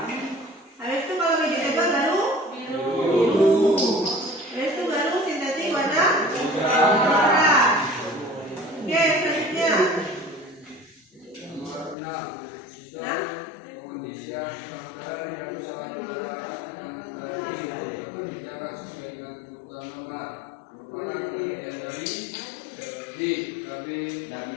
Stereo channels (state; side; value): drops out; right; at 12.0 s